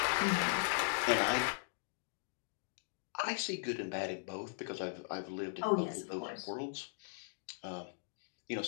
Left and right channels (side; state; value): right; silent; digital silence